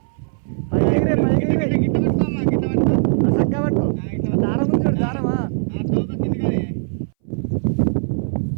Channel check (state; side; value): silent; left; 63 dB below the other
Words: చక్కగా పట్టుకో. దారం ఉంది చూడు, దారమా